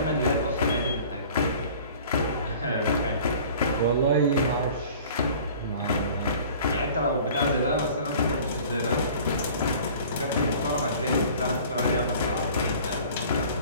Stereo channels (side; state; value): both; inverted; correlation -0.47